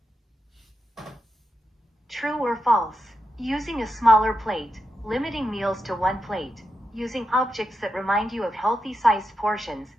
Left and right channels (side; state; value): both; normal; correlation 0.86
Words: True or false? Using a smaller plate, limiting meals to 1 plate, using objects that remind you of healthy-sized portions,